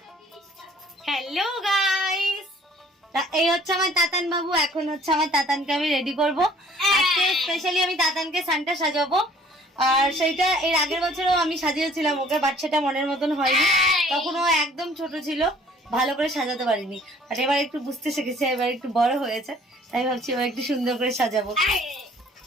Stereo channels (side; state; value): both; normal; correlation 0.55